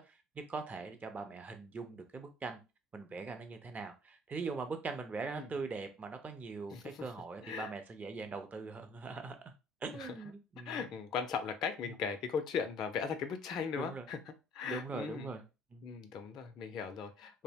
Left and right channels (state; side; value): normal; both; correlation 0.57